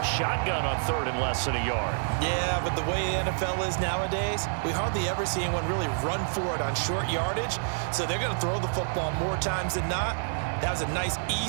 shotgun on 3rd and less than a yard. Yeah, but the way the NFL is nowadays, we hardly ever see anyone really run for it on short yardage. So they're going to throw the football more times than not. That was a nice,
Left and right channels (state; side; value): silent; left; 57 dB below the other